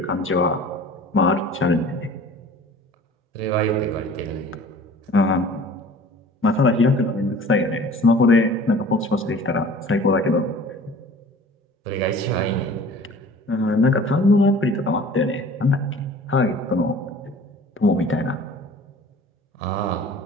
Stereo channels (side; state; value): both; normal; correlation 0.46